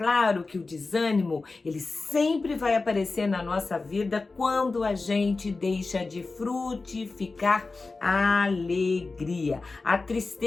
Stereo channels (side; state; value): right; quieter; 3.8 dB